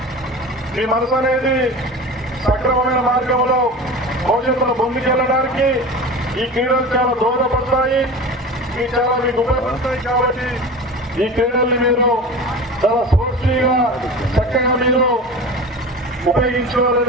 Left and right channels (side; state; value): both; normal; correlation 0.33